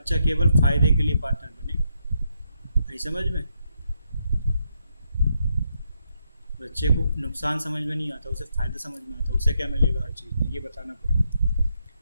केवल फायदे के लिए पार्टनर बनेगा। नहीं समझ में? बच्चे को नुकसान समझ में नहीं आता, उसे फ़ायदा समझ में आता, उसे क्या मिलेगा हर चीज़ में, ये बताना पड़ेगा।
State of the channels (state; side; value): inverted; both; correlation -0.79